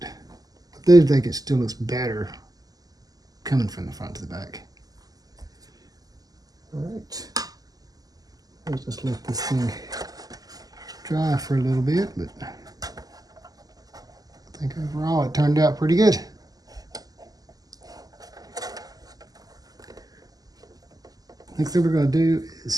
I do think it still looks better coming from the front to the back. All right, let's just let this thing dry for a little bit, but I think overall it turned out pretty good. Next thing we're going to do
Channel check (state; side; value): late; left; 0.18 ms